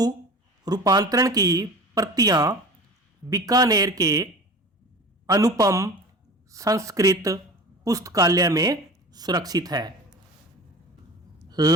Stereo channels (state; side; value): normal; both; correlation 0.36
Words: रूपांतरण की प्रतियां बीकानेर के अनुपम संस्कृत पुस्तकालय में सुरक्षित है।